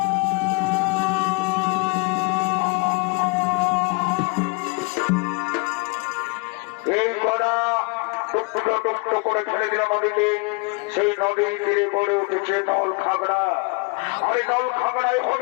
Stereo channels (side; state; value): right; quieter; 29.2 dB